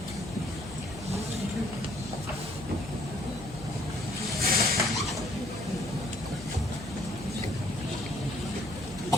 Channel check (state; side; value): noise; left; hum, 14 dB below the sound